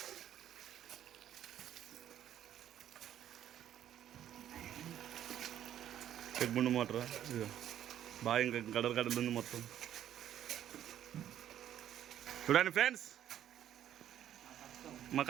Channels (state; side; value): quieter; left; 11.0 dB